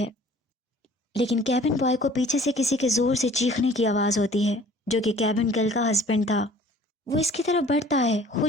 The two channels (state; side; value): normal; both; correlation 0.51